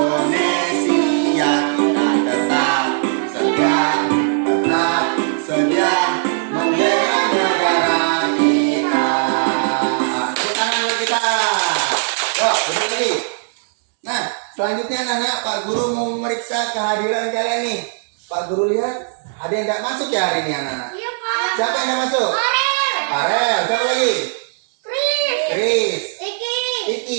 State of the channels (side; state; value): left; silent; digital silence